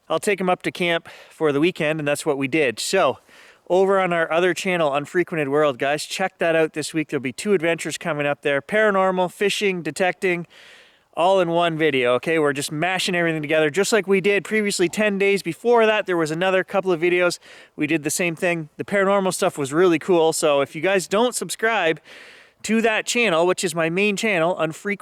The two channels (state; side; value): identical; both; correlation 1.00